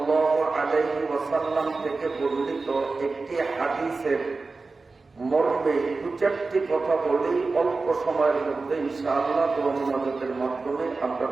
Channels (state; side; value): quieter; left; 3.9 dB